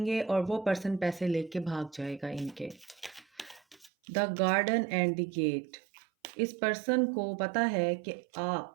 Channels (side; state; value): left; drops out; at 3.9 s